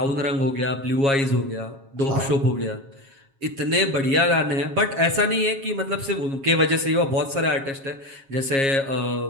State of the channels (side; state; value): left; late; 7.3 ms